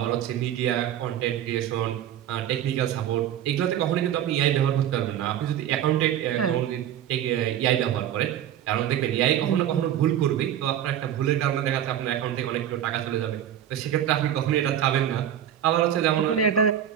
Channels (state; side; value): quieter; left; 10.4 dB